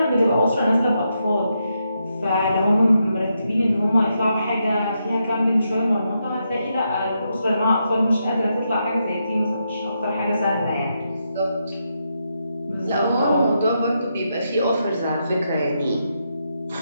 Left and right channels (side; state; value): both; inverted; correlation -0.82